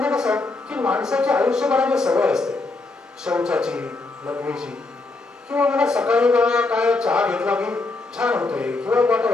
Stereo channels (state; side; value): quieter; right; 3.4 dB